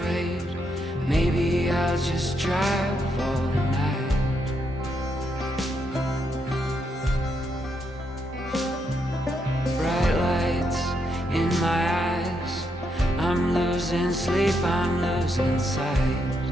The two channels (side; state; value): both; normal; correlation 0.79